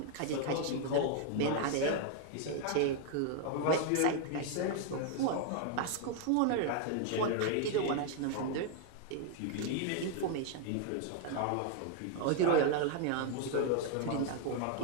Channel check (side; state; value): both; different; correlation 0.00